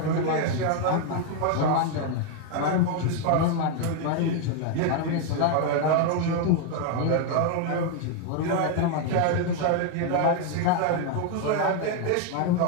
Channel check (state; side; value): different; both; correlation 0.01